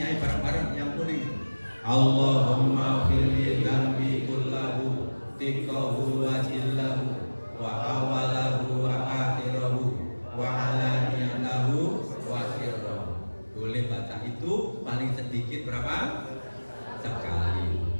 bareng-bareng yang kuning. Allahumma firli dzambi kullahu tiqahu wa jillahu wa awalahu wa akhirahu wa alaniyatahu wa sirrahu. Boleh baca itu paling sedikit berapa? Sekali.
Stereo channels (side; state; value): both; inverted; correlation -1.00